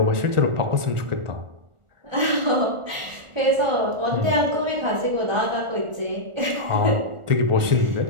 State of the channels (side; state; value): left; late; 1.4 ms